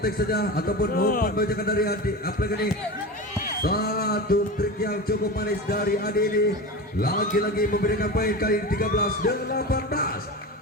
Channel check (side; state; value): both; normal; correlation 0.27